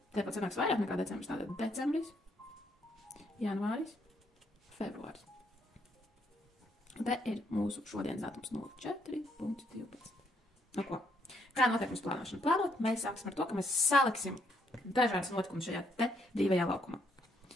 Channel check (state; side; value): normal; both; correlation 0.72